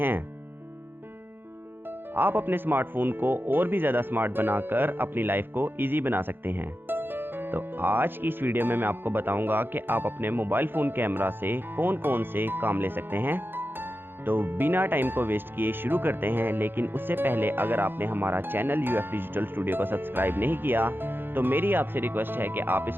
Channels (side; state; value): left; late; 0.10 ms